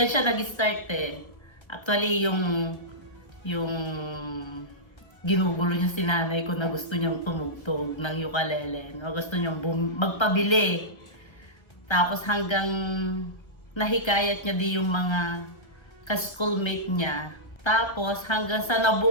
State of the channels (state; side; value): late; right; 1.3 ms